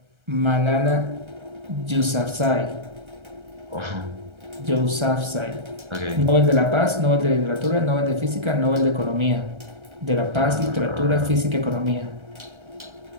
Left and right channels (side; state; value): left; late; 1.3 ms